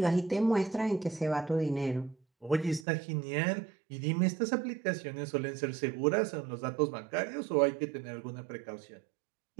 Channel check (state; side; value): drops out; left; at 2.9 s